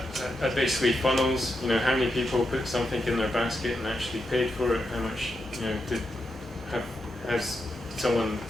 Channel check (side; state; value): both; normal; correlation 0.85